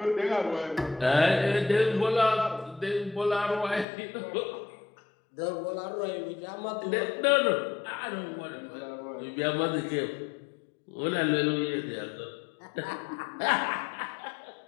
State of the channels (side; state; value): right; drops out; at 3.9 s